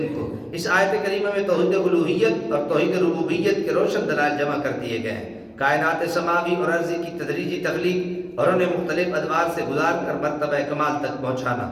کو۔ اس آیت کریمہ میں توحید الوہیت اور توحید ربوبیت کے روشن دلائل جمع کر دیے گئے ہیں۔ کائنات سماوی اور ارضی کی تدریجی تخلیق اور انہیں مختلف ادوار سے گزار کر مرتبہ کمال تک پہنچانا۔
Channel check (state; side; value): identical; both; correlation 1.00